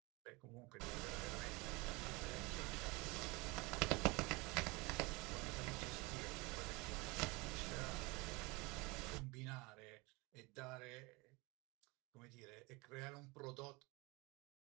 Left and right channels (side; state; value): left; quieter; 25.4 dB